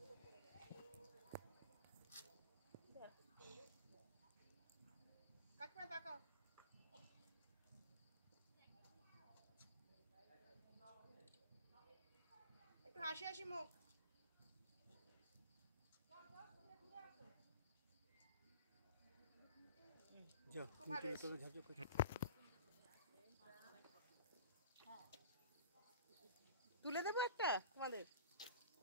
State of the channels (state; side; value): inverted; both; correlation -0.39